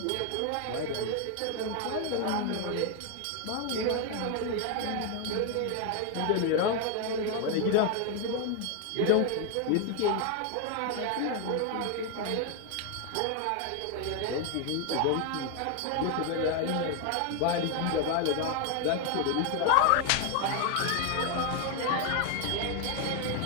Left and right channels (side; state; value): both; different; correlation 0.01